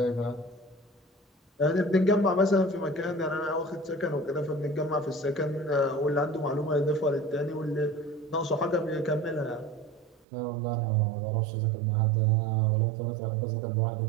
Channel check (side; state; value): left; drops out; at 10.2 s